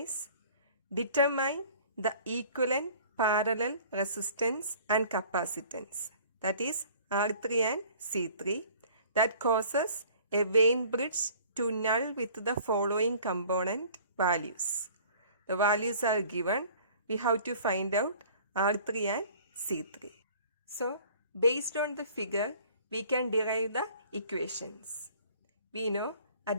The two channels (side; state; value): both; inverted; correlation -0.50